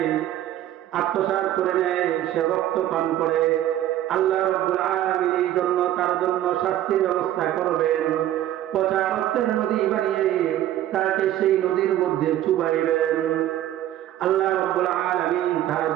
করে নেয়, সে রক্ত পান করে। আল্লাহ রাব্বুল আলামিন এই জন্য তার জন্য শাস্তির ব্যবস্থা করবেন। পচা রক্তের নদী বানিয়ে তাকে সেই নদীর মধ্যে চুবাইবেন। আল্লাহ রাব্বুল আলামিন তার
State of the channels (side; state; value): left; quieter; 12.8 dB